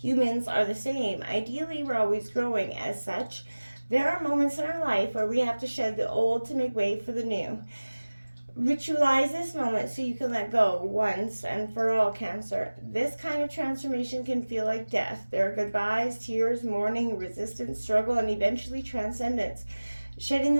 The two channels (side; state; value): both; inverted; correlation -1.00